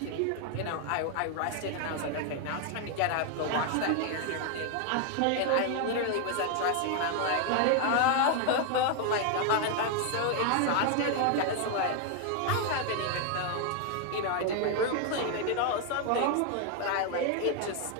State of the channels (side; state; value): both; different; correlation 0.00